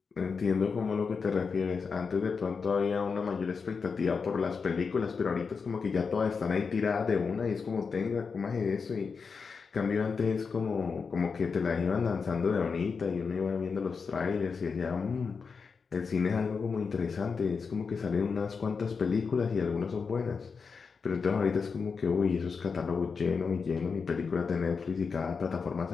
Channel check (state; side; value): quieter; right; 5.3 dB